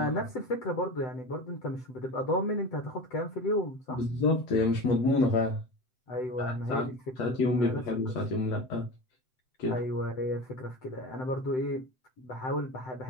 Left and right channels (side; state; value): right; late; 7.8 ms